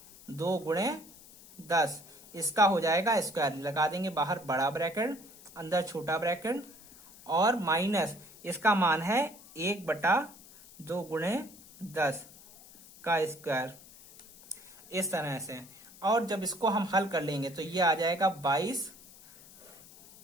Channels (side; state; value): left; noise; hiss, 21 dB below the sound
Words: गुणे 10। इसका हो जाएगा स्क्वायर, लगा देंगे बाहर बड़ा ब्रैकेट, अंदर छोटा ब्रैकेट, और माइनस इसका मान है 1/2 गुणे 10 का स्क्वायर, इस तरह से। और जब इसको हम हल कर लेंगे तो ये आ जाएगा